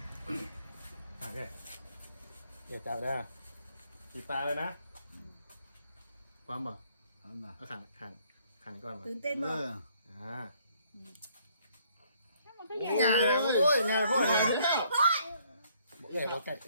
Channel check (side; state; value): both; inverted; correlation -0.65